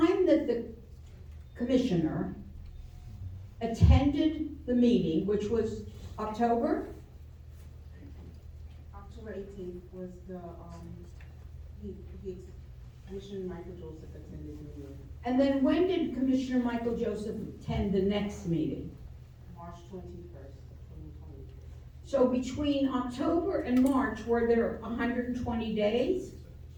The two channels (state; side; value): identical; both; correlation 1.00